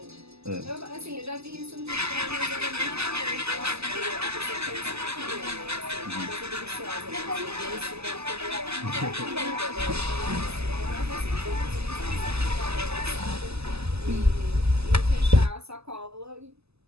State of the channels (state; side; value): late; left; 0.79 ms